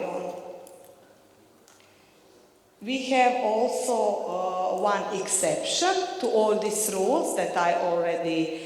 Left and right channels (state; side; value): identical; both; correlation 1.00